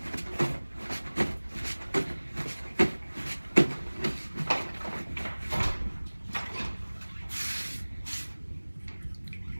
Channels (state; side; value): inverted; both; correlation -1.00